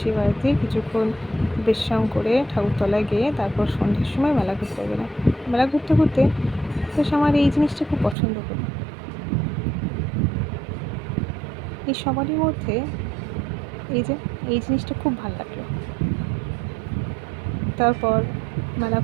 বাড়িতে কিছুক্ষণ বিশ্রাম করে ঠাকুরতলায় গিয়ে তারপর সন্ধ্যের সময় মেলা ঘুরতে গেলাম। মেলা ঘুরতে বেশ আমার এই জিনিসটা খুব পছন্দ হলো। এই সবারই মধ্যে এই জিনিসটা খুব ভালো লাগলো। তারপর মেলা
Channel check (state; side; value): drops out; left; at 8.2 s